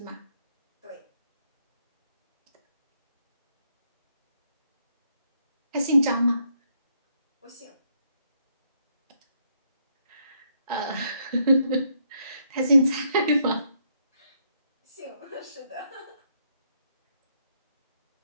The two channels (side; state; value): both; inverted; correlation -0.74